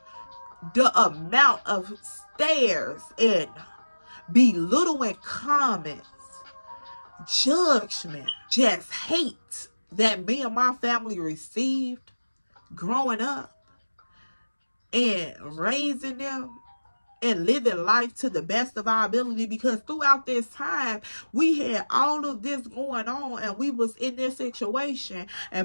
the amount of stares and belittling comments, judgment, just hate that me and my family received growing up and raising them and living life to the best of our ability, because throughout this time we had all of this going on and we was in this situation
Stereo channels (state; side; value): inverted; both; correlation -1.00